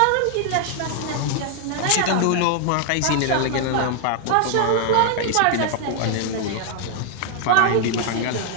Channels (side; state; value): both; different; correlation 0.00